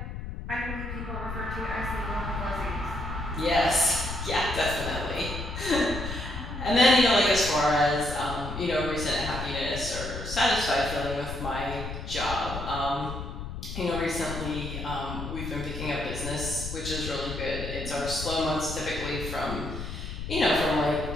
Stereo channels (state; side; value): noise; left; rumble, 7 dB below the sound